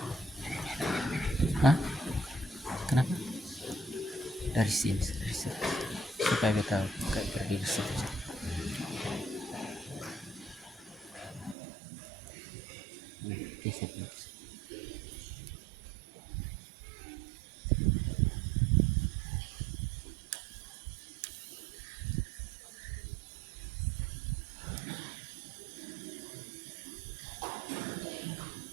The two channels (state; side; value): drops out; left; at 11.6 s